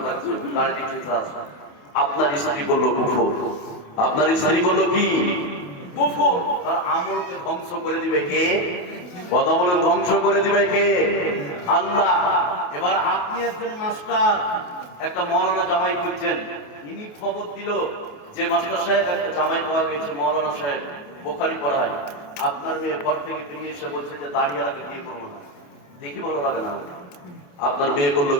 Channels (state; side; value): late; right; 28 ms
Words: লাগছে, দাড়িটি চেঁচে আসো। আপনার স্ত্রী করলো কুফর। আপনার স্ত্রী করলো কি? কুফর। তার আমলকে ধ্বংস করে দিবে কে? কথা বলেন, ধ্বংস করে দিবে কে? আল্লাহ। এবার আপনি একজন মাস্টার, একটা মৌলানা জামাই খুঁজছেন, ইনি খবর দিল যে মাস্টার সাহেব একটা জামাই পাওয়া গেছে, মৌলানা সাহেব বুখারী পড়ায়। আপনার মেয়ে ঘর থেকে বেরিয়ে এসে বলছে যে দাঁড়িয়ালাকে বিয়ে করবো না, দেখি ভালো লাগে না। আপনার মেয়ে করলো